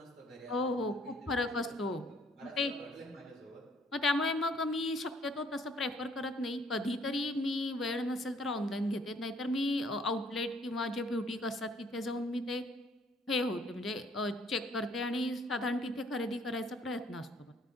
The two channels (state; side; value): normal; both; correlation 0.61